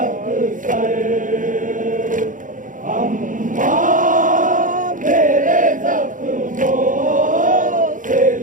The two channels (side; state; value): left; late; 0.38 ms